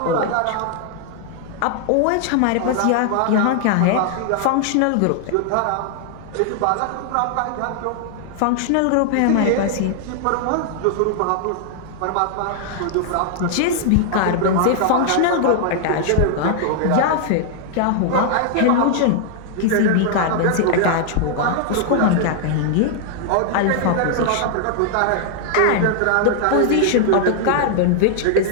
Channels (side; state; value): both; different; correlation 0.00